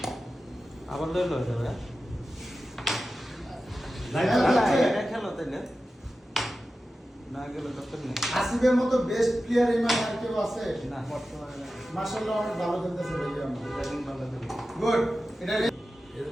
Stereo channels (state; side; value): normal; both; correlation 0.93